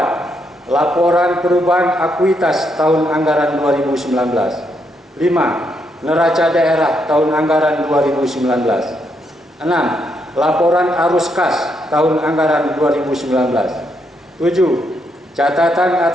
Laporan perubahan akuitas tahun anggaran 2019. 5. Neraca daerah tahun anggaran 2019. 6. Laporan arus kas tahun anggaran 2019. 7. Catatan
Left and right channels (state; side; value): normal; both; correlation 0.78